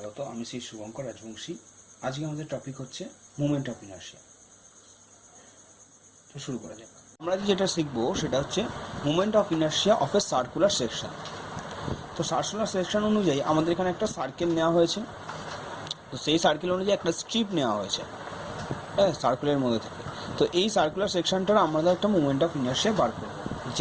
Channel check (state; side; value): identical; both; correlation 1.00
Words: আমি শ্রী শুভঙ্কর রাজবংশী। আজকে আমাদের টপিক হচ্ছে মুভমেন্ট অফ ইনার্শিয়া। তো শুরু করা যাক। আমরা যেটা শিখবো সেটা হচ্ছে movement of inertia of A circular section. তো সার্কুলার সেকশন অনুযায়ী আমাদের এখানে একটা সার্কেল নেওয়া হয়েছে। তো সেই সার্কেল অনুযায়ী একটা স্ট্রিপ নেওয়া হয়েছে, হ্যাঁ, সার্কেলের মধ্যে থেকে। তো এই সার্কুলার সেকশনটার আমাদের একটা মুভমেন্ট অফ ইনার্শিয়া বার করবো,